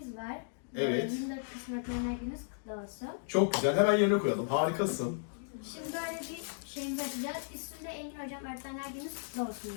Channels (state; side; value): silent; right; digital silence